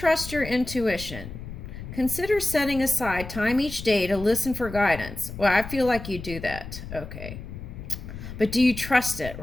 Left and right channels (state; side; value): noise; left; rumble, 11 dB below the sound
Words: your intuition? Consider setting aside time each day to listen for guidance. Well, I feel like you do that. Okay. But do you trust it,